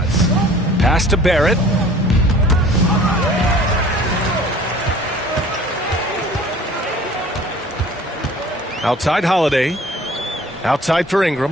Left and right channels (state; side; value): normal; both; correlation 0.49